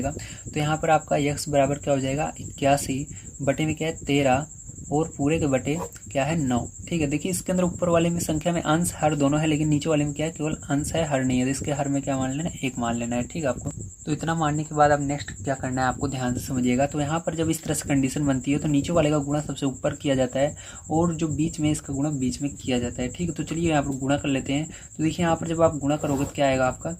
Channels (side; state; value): both; identical; correlation 1.00